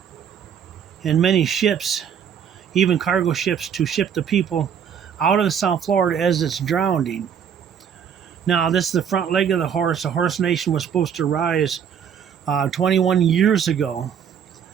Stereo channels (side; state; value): left; quieter; 7.9 dB